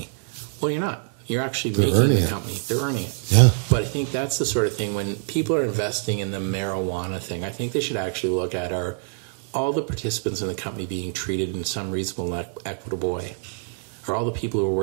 Well, you're not. You're actually making the company. They're earning it. Yeah. But I think that's the sort of thing, when people are investing in the marijuana thing, I think they should actually look at all the participants in the company being treated in some reasonable, equitable way. Or all the people who are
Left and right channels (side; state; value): left; silent; 59 dB below the other